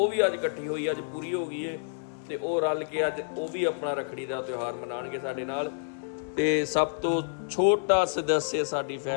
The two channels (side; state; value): right; silent; digital silence